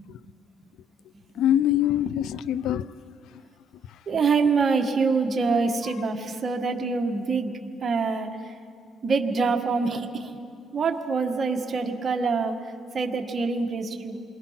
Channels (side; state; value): both; normal; correlation 0.69